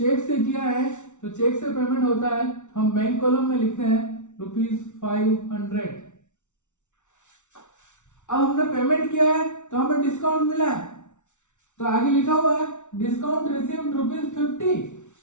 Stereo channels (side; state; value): right; late; 0.85 ms